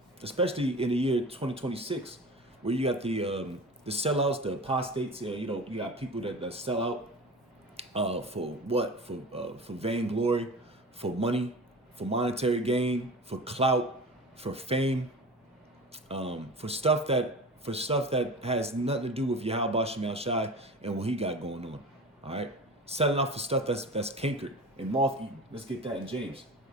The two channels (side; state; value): both; normal; correlation 0.34